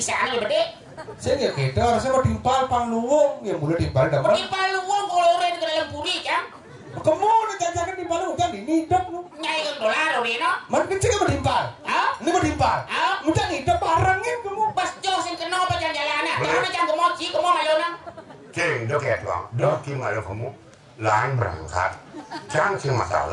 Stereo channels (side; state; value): both; identical; correlation 1.00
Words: ya bede. Saya nggak kita harusnya mau timpal pangluwung ya mulai timpal dapat. Timpal luwung kalau orang ke dalam puri kan? Kamu udah jajakan timpal lu kan ini hidup lu. Nyai ke dolar orang no? Mana kecil mau timpal? Hah? Ini mau timpal? Hah? Mudah hidup barangnya kamu. Pas jauh sing kena apa jalan-jalannya? Jangan jangan kemoci, kamu malona. Cing, dok ya tuang, dok gimana kamu? Lain berangkat, jangan sih